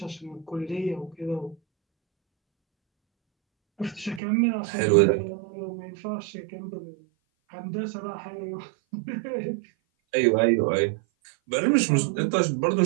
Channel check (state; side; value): drops out; left; at 4.2 s